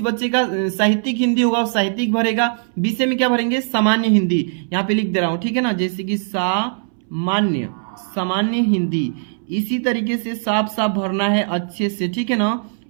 बच्चे का साहित्यिक हिंदी होगा वो साहित्यिक भरेगा, विषय में क्या भरेंगे सामान्य हिंदी, यहाँ पे लिख दे रहा हूं, ठीक है ना, जैसे कि सामान्य हिंदी। इसी तरीके से साफ साफ भरना है अच्छे से, ठीक है ना,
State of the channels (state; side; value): silent; left; 64 dB below the other